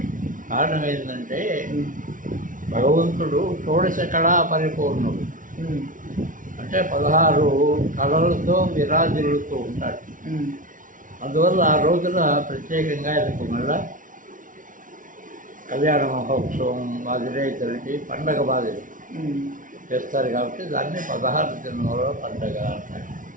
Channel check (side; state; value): left; late; 0.38 ms